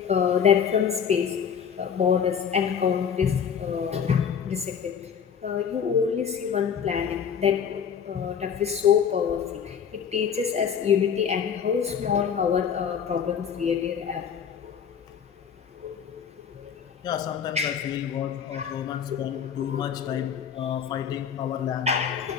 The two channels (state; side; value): quieter; right; 7.5 dB